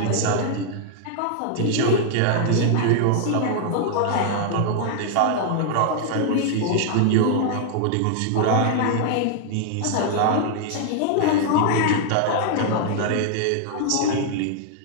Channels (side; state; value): both; different; correlation 0.00